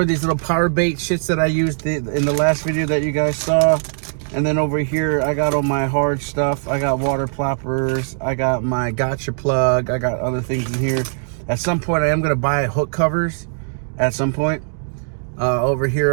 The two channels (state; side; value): silent; left; digital silence